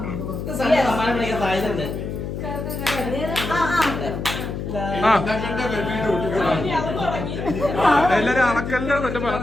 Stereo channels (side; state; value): left; noise; hum, 5 dB below the sound